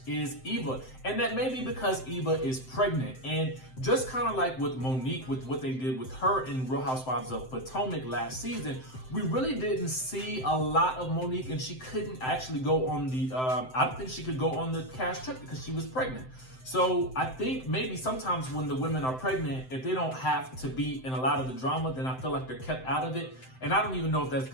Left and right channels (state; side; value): late; right; 7.8 ms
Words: is Eva. And that may be because Eva is pregnant. And just kind of like with Monique, with what they did with her in Real Housewives of Potomac last season, we really didn't see a lot of Monique, and she couldn't actually go on the, I don't think she could go on the cast trip because she was pregnant. So I think maybe sometimes when the women are pregnant, if they don't have to be in a lot of the drama, then I feel like they're kept out of it. And I don't even know if that's